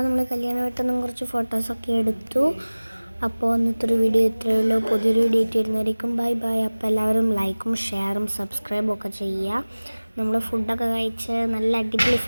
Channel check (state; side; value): inverted; both; correlation -1.00